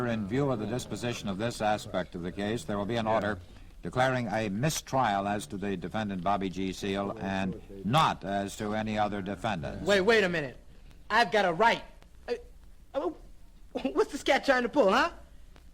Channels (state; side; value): identical; both; correlation 1.00